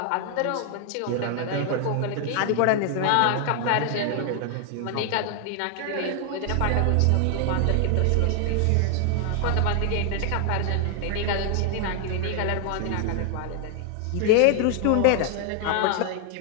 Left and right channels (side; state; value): both; different; correlation 0.00